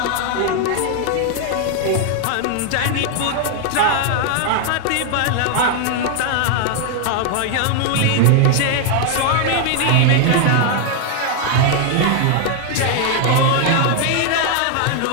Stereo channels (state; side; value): different; both; correlation 0.00